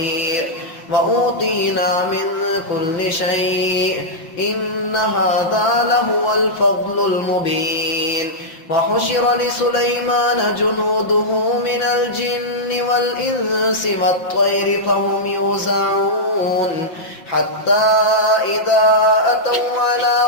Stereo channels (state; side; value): late; right; 5.7 ms